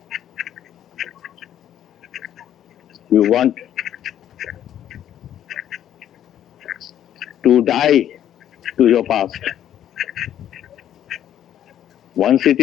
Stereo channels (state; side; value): quieter; right; 10.8 dB